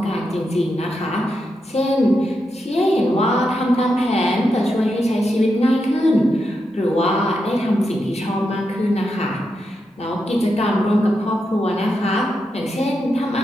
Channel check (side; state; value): both; normal; correlation 0.85